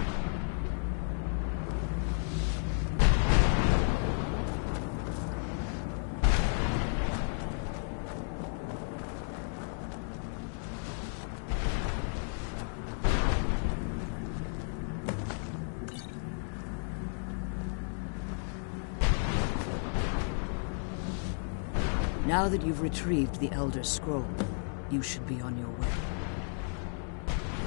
Now that you've retrieved the Elder Scroll, you should be on your way.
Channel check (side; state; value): right; silent; 56 dB below the other